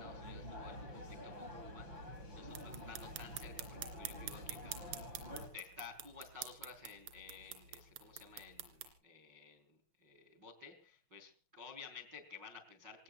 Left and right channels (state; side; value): late; left; 6.0 ms